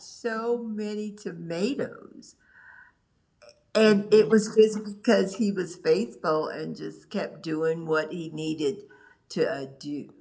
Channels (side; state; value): both; identical; correlation 1.00